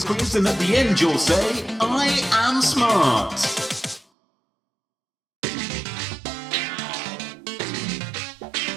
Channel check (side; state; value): left; drops out; at 4.0 s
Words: quiz, and at the end you'll say, I am smart.